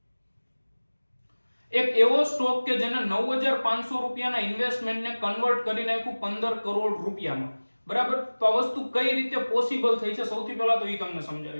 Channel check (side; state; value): both; inverted; correlation -1.00